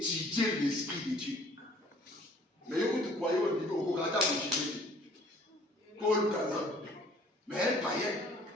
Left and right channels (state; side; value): normal; both; correlation 0.55